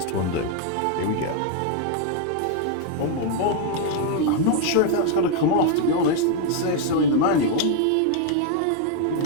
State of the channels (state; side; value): different; both; correlation 0.00